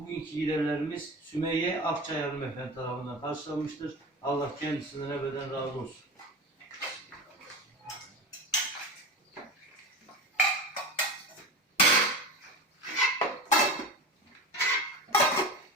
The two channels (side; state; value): both; normal; correlation 0.28